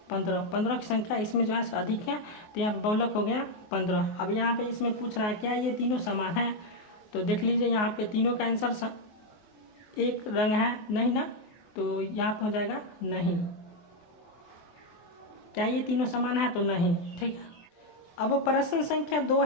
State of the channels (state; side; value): late; right; 24 ms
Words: 15। 15 की संख्या इसमें जो है अधिक है, तो यहाँ पे बहुलक हो गया 15। अब यहाँ पे इसमें पूछ रहा है क्या ये तीनों समान है, तो देख लीजिए यहाँ पे तीनों का आंसर एक रंग है नहीं ना, तो यहाँ पे हो जाएगा नहीं। क्या ये तीनों समान है, तो नहीं। ठीक है। अब प्रश्न संख्या 2